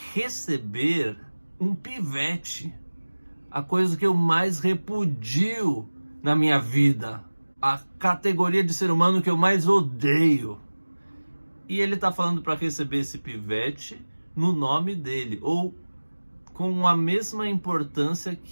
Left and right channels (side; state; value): both; inverted; correlation -1.00